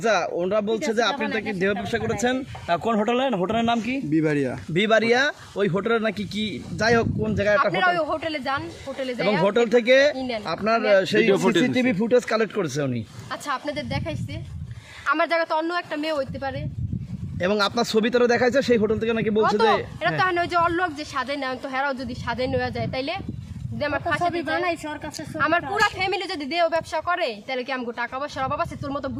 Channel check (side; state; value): both; identical; correlation 1.00